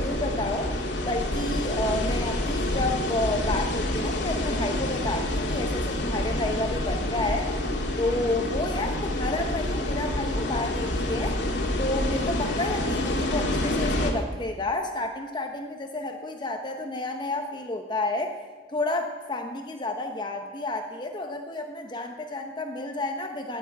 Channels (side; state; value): both; normal; correlation 0.45